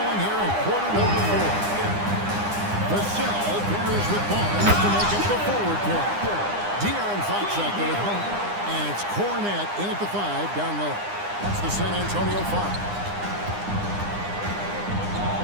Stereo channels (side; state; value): left; late; 9.8 ms